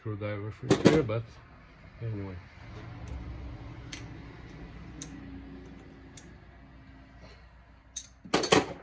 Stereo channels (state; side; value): identical; both; correlation 1.00